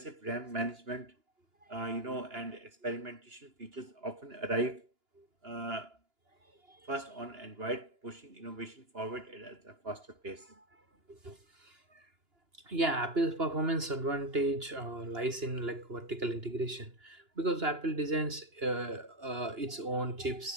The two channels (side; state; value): left; late; 2.9 ms